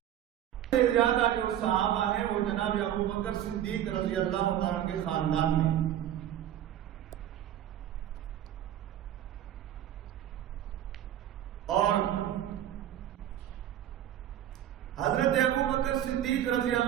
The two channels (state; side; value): quieter; left; 11.3 dB